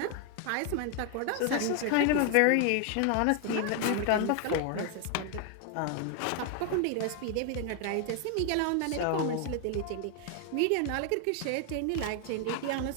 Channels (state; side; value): different; both; correlation 0.01